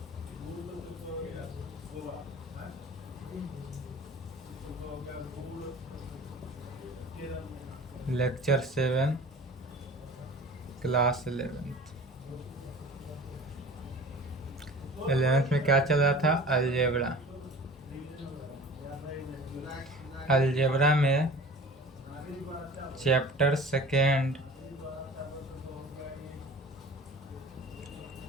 Lecture 7 class 11th। 11th में क्या चल रहा था? अलजेब्रा। अलजेब्रा में chapter 2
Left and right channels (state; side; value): normal; both; correlation 0.42